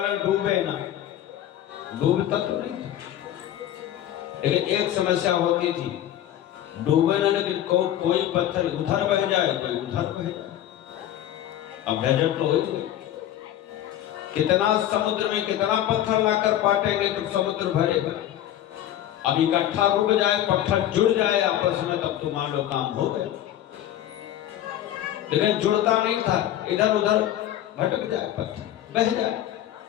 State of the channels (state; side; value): quieter; right; 12.1 dB